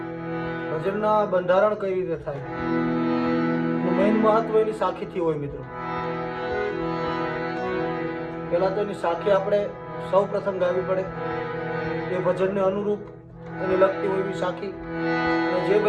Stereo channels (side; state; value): both; identical; correlation 1.00